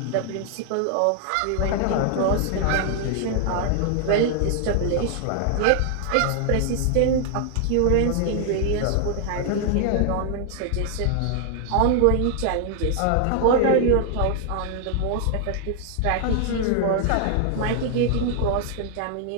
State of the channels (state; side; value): different; both; correlation 0.00